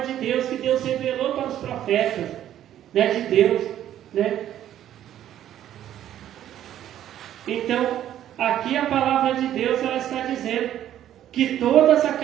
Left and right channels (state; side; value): quieter; left; 11.5 dB